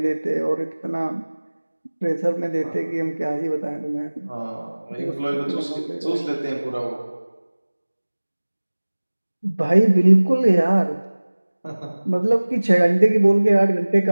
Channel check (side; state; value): both; inverted; correlation -1.00